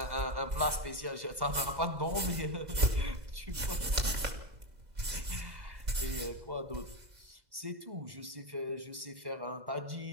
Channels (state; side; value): late; left; 2.0 ms